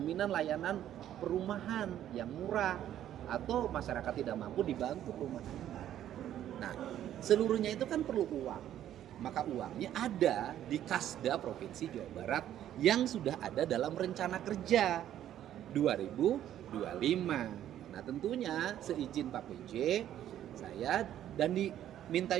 layanan perumahan yang murah, atau masyarakat tidak mampu dibantu perumahan. Nah, seluruhnya itu kan perlu uang. Maka uangnya ada di Kasda Provinsi Jawa Barat yang sudah ada dalam rencana kerja 2025. Nah, tentunya seizin Pak PJ, saya dan diminta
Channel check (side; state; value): left; quieter; 11.5 dB